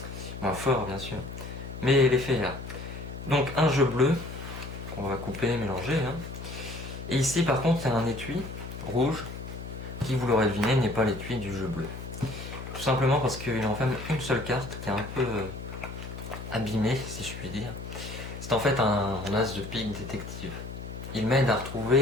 fort bien sûr. Mais l'effet est là. Donc un jeu bleu qu'on va couper, mélanger. Et ici par contre il y a un étui rouge qui, vous l'aurez deviné, n'est pas l'étui du jeu bleu. Tout simplement parce qu'il enferme une seule carte qui est un peu abîmée, si je puis dire. C'est en fait un as de pique détective. Il m'aide à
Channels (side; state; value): left; noise; hum, 10 dB below the sound